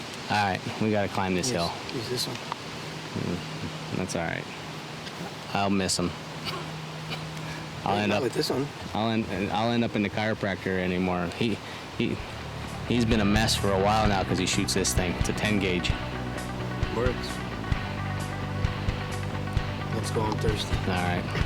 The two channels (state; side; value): identical; both; correlation 1.00